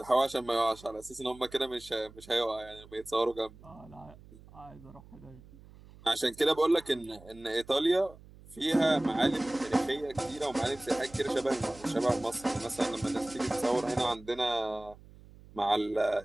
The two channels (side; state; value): right; noise; hum, 21 dB below the sound